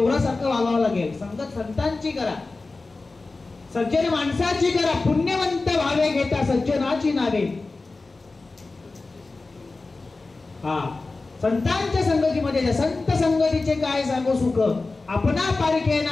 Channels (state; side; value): quieter; right; 3.6 dB